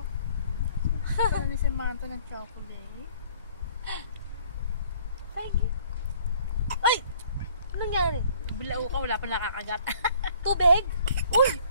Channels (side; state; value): both; inverted; correlation -0.57